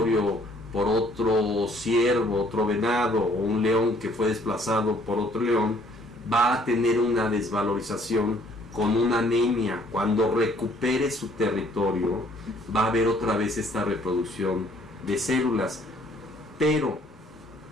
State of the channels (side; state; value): both; normal; correlation 0.61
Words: por otro ciervo, otro venado, o un león que fue desplazado por otro león, va a tener una desvalorización con una anemia. Cuando recupere su territorio, va a haber otra vez esta reproducción de células. Pero